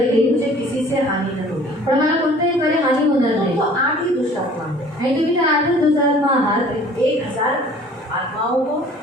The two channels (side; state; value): both; normal; correlation 0.50